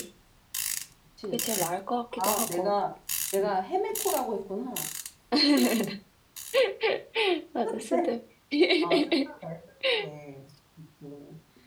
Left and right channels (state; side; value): identical; both; correlation 1.00